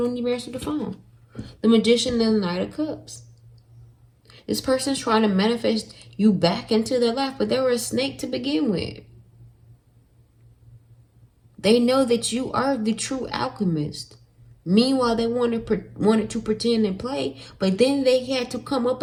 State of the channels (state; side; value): identical; both; correlation 1.00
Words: even answer the phone. The Magician and the Knight of Cups. This person's trying to manifest you back into their life, but they were a snake to begin with. They know that you are the true alchemist. Meanwhile, they wanted to pretend and play, but then they had to come up